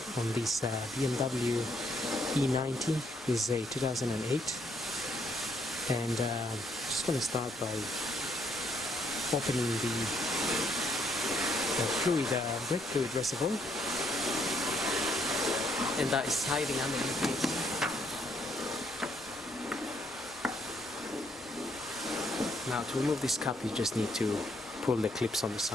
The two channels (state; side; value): normal; both; correlation 0.72